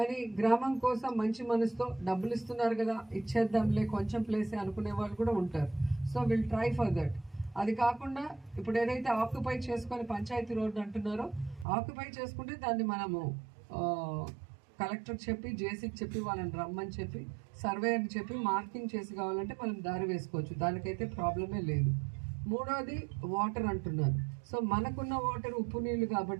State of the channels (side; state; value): left; drops out; at 11.7 s